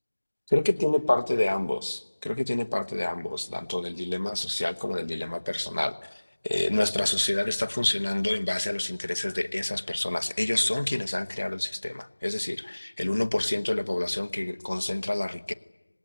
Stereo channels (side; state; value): both; inverted; correlation -1.00